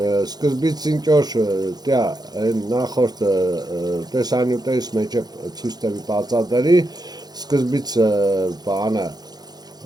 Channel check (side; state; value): left; late; 0.19 ms